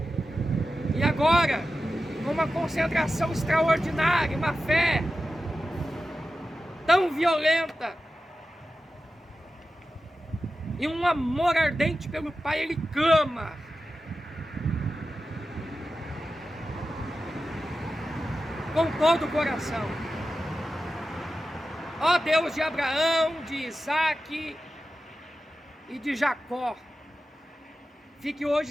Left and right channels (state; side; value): normal; both; correlation 0.93